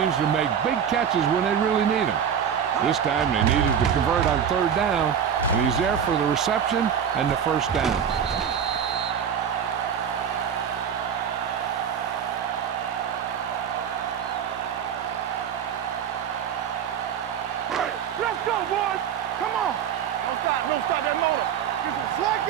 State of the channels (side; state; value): left; quieter; 8.1 dB